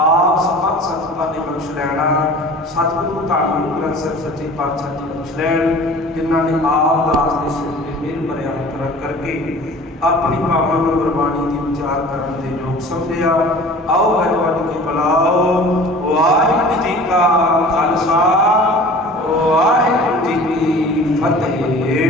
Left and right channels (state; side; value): normal; both; correlation 0.43